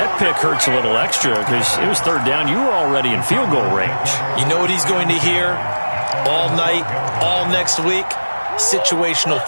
pick hurts a little extra because it was 3rd down. You were already in field goal range. You know what he's going to hear all night, all next week? Situational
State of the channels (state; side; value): inverted; both; correlation -1.00